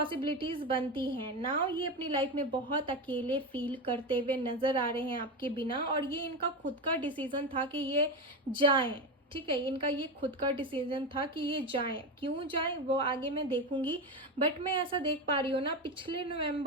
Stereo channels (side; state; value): both; normal; correlation 0.17